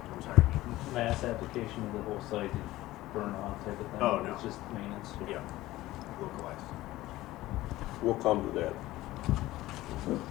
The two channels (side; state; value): right; quieter; 16.9 dB